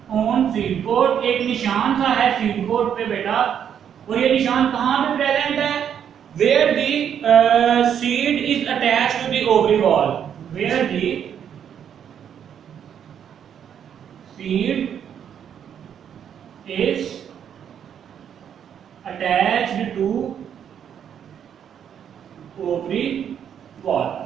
ऑन सीड कोट, एक निशान सा है सीड कोट पे बेटा, और ये निशान कहां पे प्रेजेंट है, where the seed is attached to the ovary wall, where the seed is attached to ovary wall.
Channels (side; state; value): left; quieter; 8.7 dB